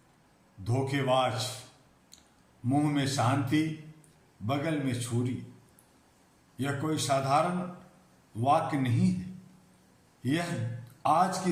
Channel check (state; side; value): identical; both; correlation 1.00